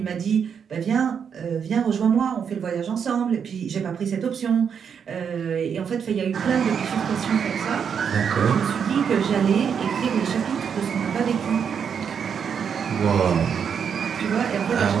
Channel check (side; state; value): left; quieter; 7.2 dB